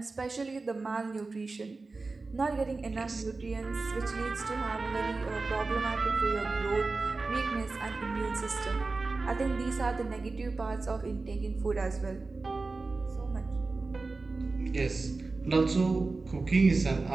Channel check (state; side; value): quieter; left; 3.7 dB